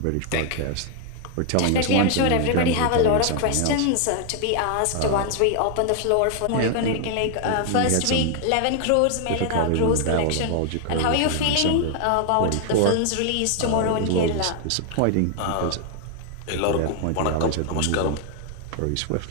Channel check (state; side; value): different; both; correlation 0.00